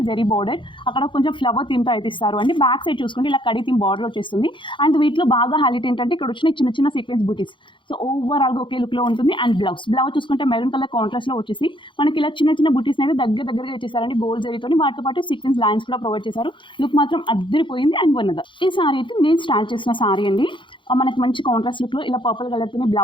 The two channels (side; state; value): right; late; 0.24 ms